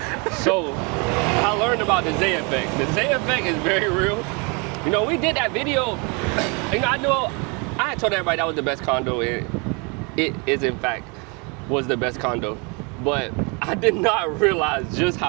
So, I learned about the Zay effect. The Zay effect is very real. You know, we did that video, you know, I had told everybody that was the best condo, and it is in fact was the best condo. But I did not realize just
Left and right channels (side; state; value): left; quieter; 31.8 dB